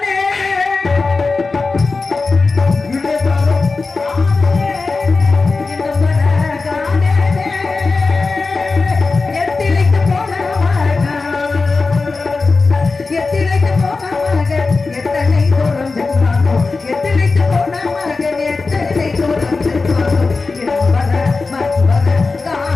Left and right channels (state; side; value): quieter; right; 4.0 dB